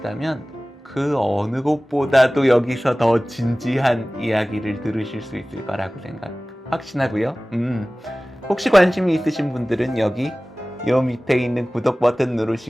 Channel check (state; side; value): normal; both; correlation 0.98